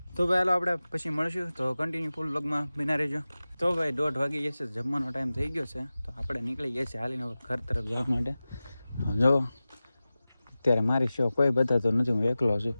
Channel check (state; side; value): inverted; both; correlation -0.96